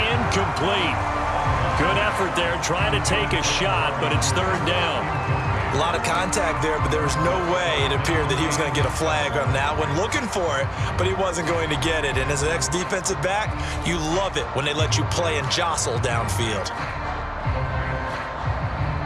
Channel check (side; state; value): both; identical; correlation 1.00